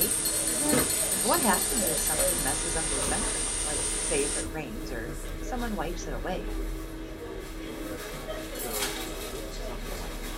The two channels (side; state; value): both; identical; correlation 1.00